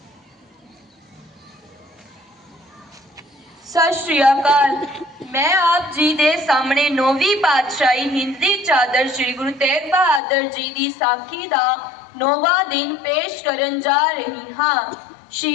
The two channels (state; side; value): drops out; right; at 10.2 s